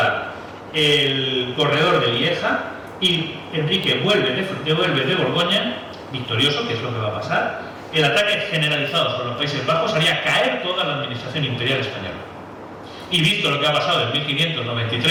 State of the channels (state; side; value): identical; both; correlation 1.00